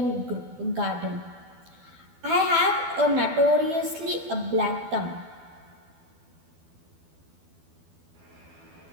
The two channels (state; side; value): late; left; 12 ms